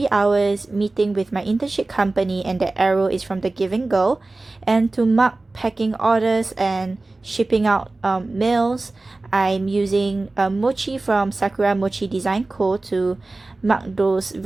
hours meeting with my internship company, and the arrow is from the Giving Girl. And to mark packing orders and shipping out mails, I'm using Mochi from SAKURAMOCHIDESIGNCO to mark those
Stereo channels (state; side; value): quieter; left; 3.2 dB